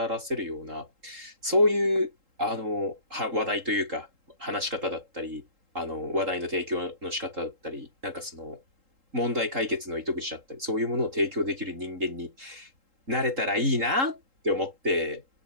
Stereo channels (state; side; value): late; left; 3.8 ms